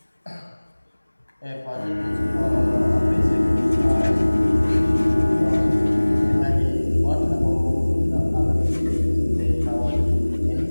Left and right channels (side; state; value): both; inverted; correlation -1.00